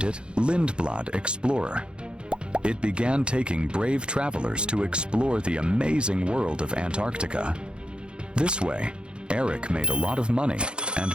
it Lindblad Explorer. It began taking brave travelers to explore the amazing world of Antarctica. This way, Eric made a lot of money and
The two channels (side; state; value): left; late; 0.054 ms